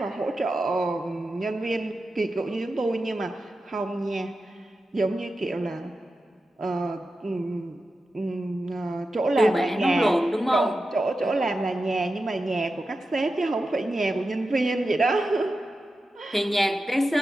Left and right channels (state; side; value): normal; both; correlation 0.91